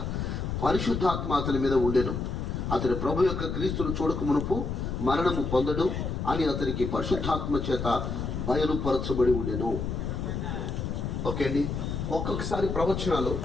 పరిశుద్ధాత్మ అతని మీద ఉండెను. అతని ప్రభు యొక్క క్రీస్తును చూడక మునుపు మరణము పొందడు అని అతనికి పరిశుద్ధాత్మ చేత బయలుపరచబడి ఉండెను. ఓకే అండి. ఒక్కొక్కసారి ప్రవచనాలు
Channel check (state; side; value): noise; left; rumble, 3 dB below the sound